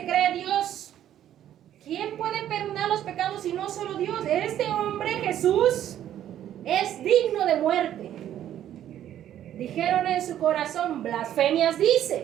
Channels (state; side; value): quieter; left; 11.3 dB